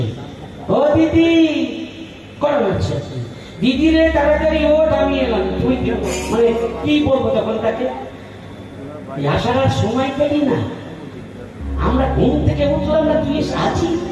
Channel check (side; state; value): both; identical; correlation 1.00